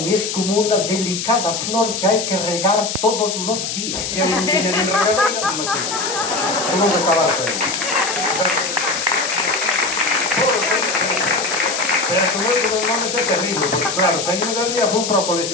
es como una delicada flor que hay que regar todos los días. Que non tiña nin regadeira, non me sigo. Tuvo que acabarse aí. Pero que moito dos nomes é terrible, porque claro, saímos de ali e fui para o colexio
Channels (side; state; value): left; noise; hiss, 4 dB below the sound